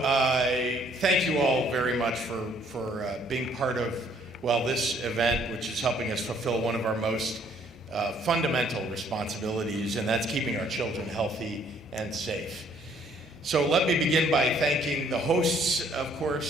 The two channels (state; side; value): normal; both; correlation 0.63